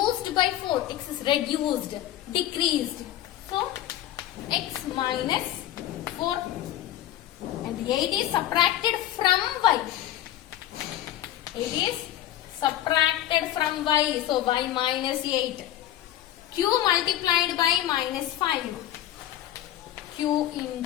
by 4. X is reduced, decreased. So X minus 4. And 8 is subtracted from Y. 8 is subtracted from Y. So Y minus 8. Q multiplied by minus 5. Q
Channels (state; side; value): quieter; right; 12.9 dB